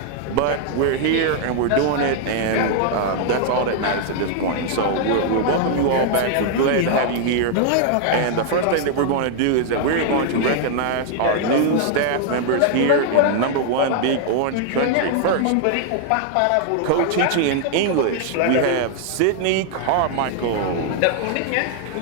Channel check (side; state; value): both; different; correlation 0.00